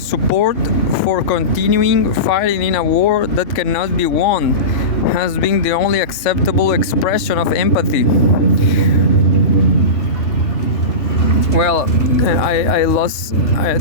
for continuing fighting in a war that cannot be won has been the only acceptable expression of empathy. Well, I lost.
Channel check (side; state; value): right; late; 3.7 ms